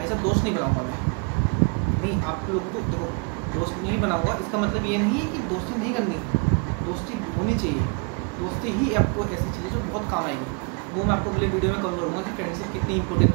साहब दोस्त नहीं बनाऊंगा मैं, नहीं, आप लोगों को देखो दोस्त नहीं बनाऊंगा, इसका मतलब ये नहीं है कि दोस्ती नहीं करनी, दोस्ती होनी चाहिए। दोस्ती ही आपको ऐसी चीज़ है जो बहुत काम आएगी, वो मैं आपको अगले वीडियो में कवर करूँगा कि फ्रेंडशिप कितनी इंपॉर्टेंट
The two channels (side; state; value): left; quieter; 34.7 dB